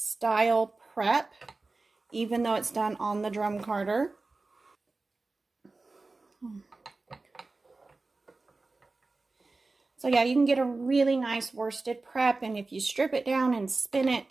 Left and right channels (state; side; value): quieter; left; 3.5 dB